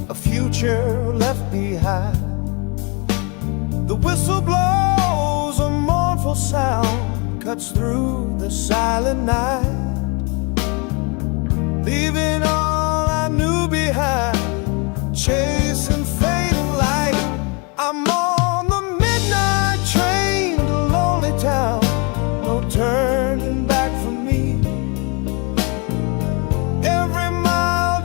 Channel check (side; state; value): right; quieter; 31.9 dB